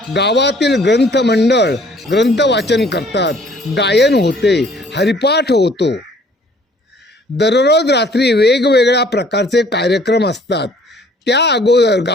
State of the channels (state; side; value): normal; both; correlation 0.57